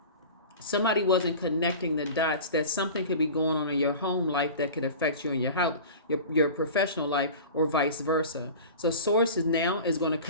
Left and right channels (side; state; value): both; inverted; correlation -0.36